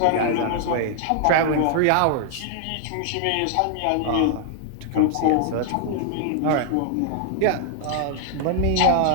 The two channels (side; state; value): both; different; correlation 0.00